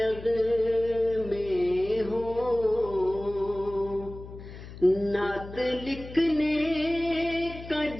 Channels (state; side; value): noise; left; hum, 14 dB below the sound